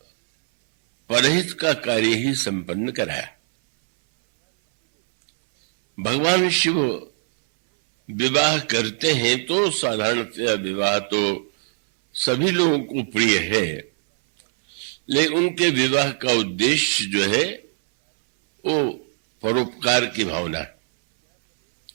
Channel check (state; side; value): silent; left; 61 dB below the other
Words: परहित का कार्य ही संपन्न कराया। भगवान शिव विवाह करते हैं तो साधारणतया विवाह तो सभी लोगों को प्रिय है, लेकिन उनके विवाह का उद्देश्य जो है वो परोपकार की भावना है।